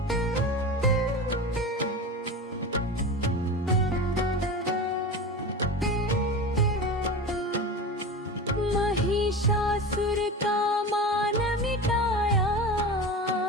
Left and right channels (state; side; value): normal; both; correlation 0.28